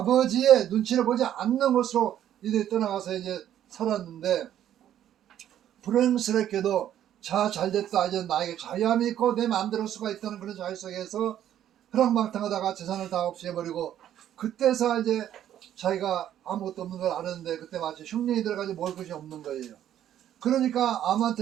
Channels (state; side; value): quieter; left; 11.1 dB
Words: 눈치를 보지 않는 곳으로 이들이 떠나가서 이제 살았는데, 불행스럽게도 자 잘됐다, 이제 나에게 자유함이 있고 내 마음대로 할 수가 있다는 그런 자유 속에서 허랑방탕하다가 재산을 다 없애버리고, 그때서 이제 자기가 아무것도 없는 걸 아는데 그때 마치 흉년이 들어가지고 먹을 것이 없는 거예요. 그러니까